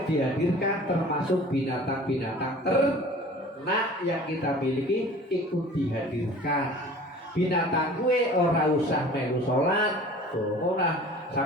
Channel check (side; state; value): both; normal; correlation 0.44